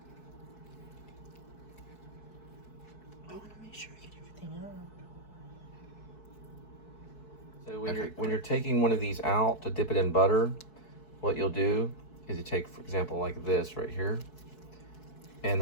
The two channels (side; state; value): right; late; 4.7 ms